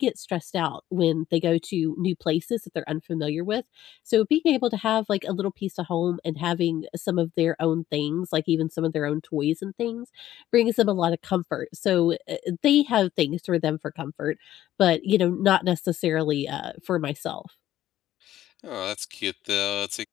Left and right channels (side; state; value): right; quieter; 13.1 dB